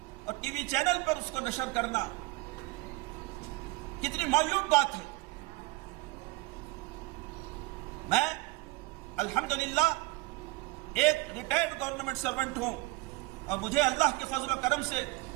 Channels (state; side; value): quieter; left; 22.2 dB